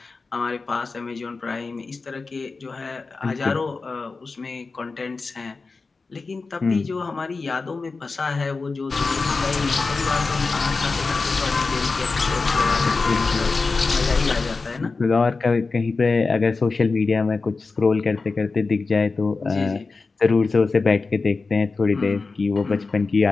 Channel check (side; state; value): right; quieter; 4.1 dB